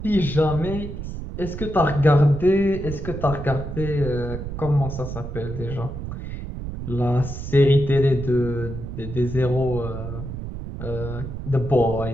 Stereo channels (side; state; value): right; noise; rumble, 8 dB below the sound